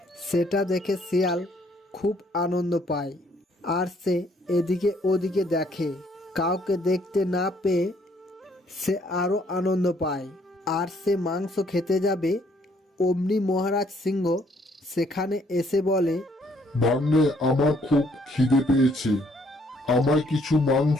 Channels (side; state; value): both; normal; correlation 0.66